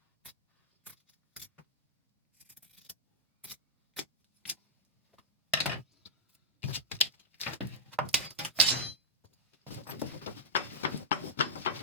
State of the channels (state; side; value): normal; both; correlation -0.11